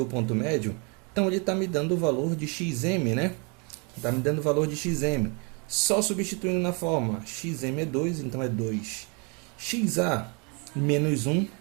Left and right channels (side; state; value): left; quieter; 33.3 dB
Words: Então ele está me dando o valor de xm, né? Está me dando o valor de xm. Só substituindo na forma, xm é 2, então é 2. xa menos 1